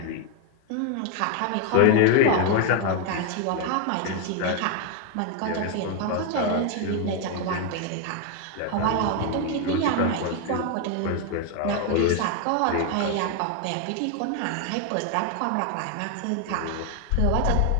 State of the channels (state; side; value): different; both; correlation 0.01